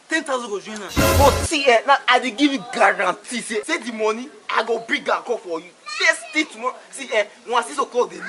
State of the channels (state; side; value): identical; both; correlation 1.00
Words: 10,000 go join us. But see, now I dey give you guarantee. Say the money, I go bring and call for you. First thing tomorrow. See, once 6 o'clock the